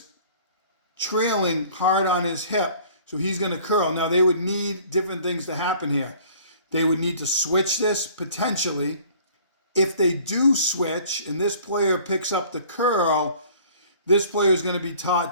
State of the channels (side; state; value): both; inverted; correlation -0.52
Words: trailing hard on his hip, so he's going to curl. Now, they would need different things to happen here. They would need to switch this, potentially. If they do switch, and this player picks up the curl, this player is going to be